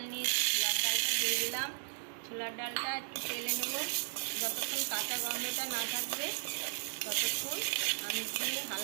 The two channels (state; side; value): silent; left; digital silence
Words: নিয়েছি। ছোলার ডালটা দিয়ে দিলাম। ছোলার ডালটা একটু তেলে নেব, যতক্ষণ কাঁচা গন্ধটা না থাকবে ততক্ষণ আমি দিয়ে